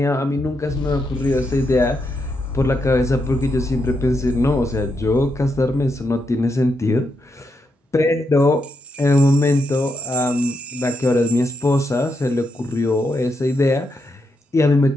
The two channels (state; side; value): normal; both; correlation 0.82